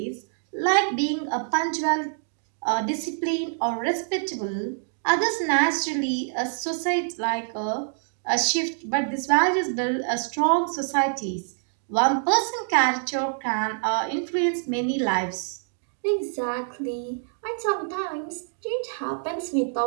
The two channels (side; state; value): left; silent; digital silence